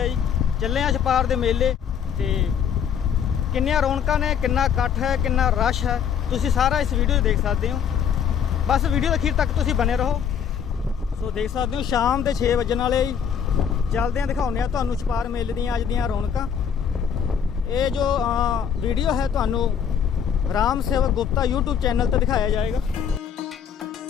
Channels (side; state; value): right; quieter; 7.8 dB